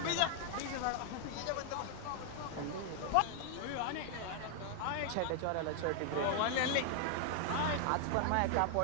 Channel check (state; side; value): different; both; correlation 0.00